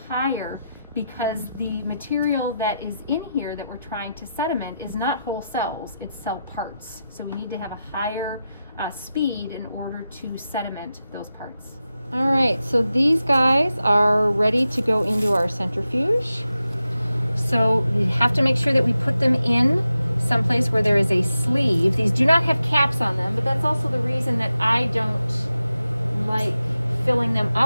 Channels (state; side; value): inverted; both; correlation -0.90